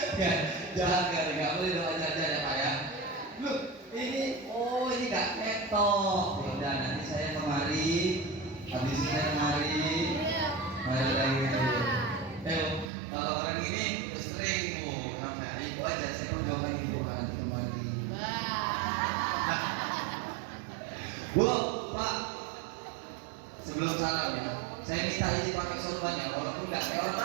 Ya, jangan nggak boleh doa aja ya Pak ya. Loh, ini nggak ketok. Ya udah nanti saya kemari, habis ini saya kemari lagi. Kalau orang ini sering Bu, sampai ibu aja saya pun coba ibu nanti kemari. Bu, Pak, sebelum salam ya, saya minta izin pakai sorbannya, walaupun nggak kayak orang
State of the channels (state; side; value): drops out; left; at 12.9 s